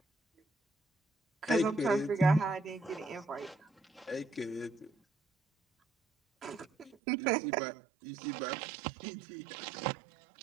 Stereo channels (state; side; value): drops out; left; at 7.0 s